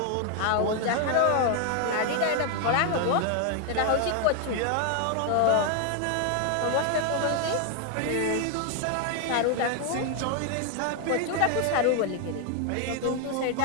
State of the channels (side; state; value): both; different; correlation 0.00